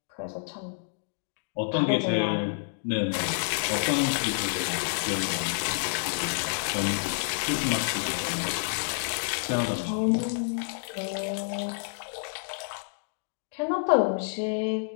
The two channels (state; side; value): silent; right; digital silence